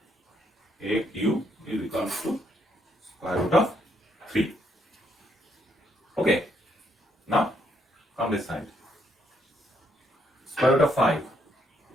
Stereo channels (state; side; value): normal; both; correlation 0.73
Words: AQ is equals to square root of 3. Okay, now come this side. Square root of 5.